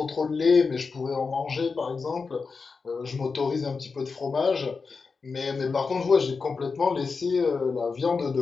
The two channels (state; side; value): quieter; right; 4.7 dB